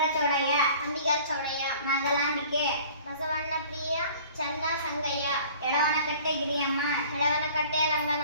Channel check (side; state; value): both; inverted; correlation -0.48